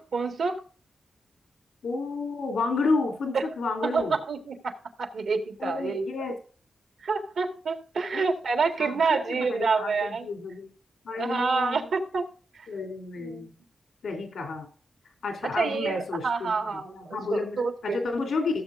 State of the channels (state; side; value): normal; both; correlation 0.83